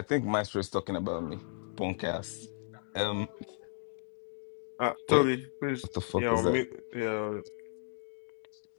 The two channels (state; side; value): silent; right; digital silence